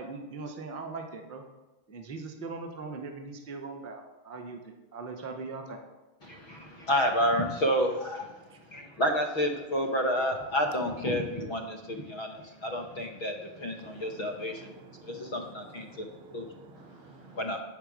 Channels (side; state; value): right; late; 6.2 ms